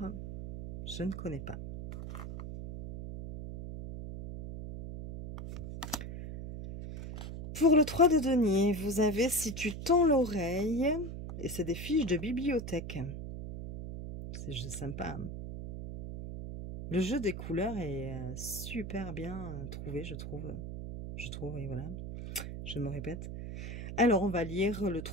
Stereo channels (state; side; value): noise; right; hum, 7 dB below the sound